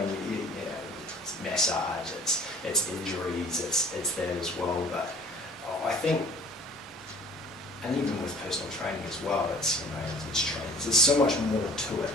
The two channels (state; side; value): normal; both; correlation 0.50